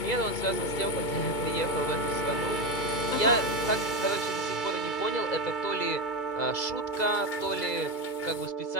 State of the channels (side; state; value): right; late; 2.3 ms